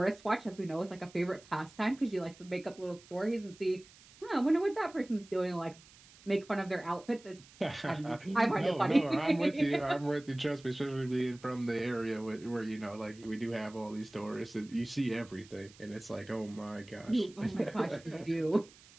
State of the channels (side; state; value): right; noise; hiss, 23 dB below the sound